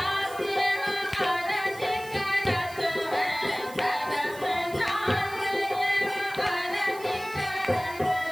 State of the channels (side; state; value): right; noise; hiss, 18 dB below the sound